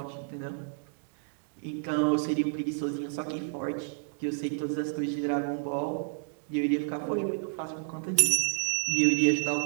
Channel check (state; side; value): silent; left; digital silence